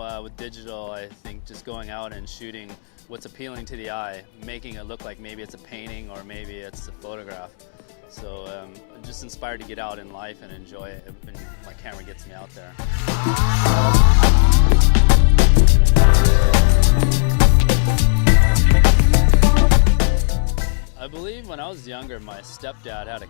with digital, I think just going out and shooting what's appealing to the eye, making it look like maybe it's a painting or maybe it's a photograph. So I'm just inspired to get out in life and enjoy it when my camera gets me out there. I believe when I was younger, my stepdad had a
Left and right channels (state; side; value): silent; right; digital silence